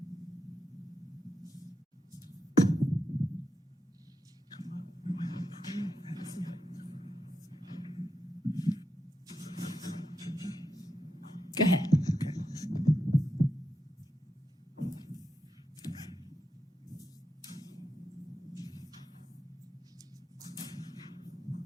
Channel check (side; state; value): both; normal; correlation 0.86